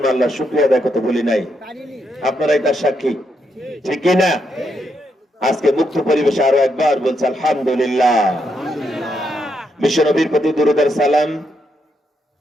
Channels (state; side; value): normal; both; correlation 0.79